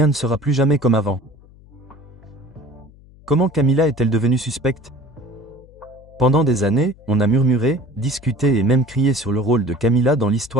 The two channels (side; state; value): left; noise; hum, 24 dB below the sound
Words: ne sera plus jamais comme avant. Comment Camilla est-elle devenue suspecte? Pendant des années, on a murmuré, discuté et même crié sur le rôle de Camilla dans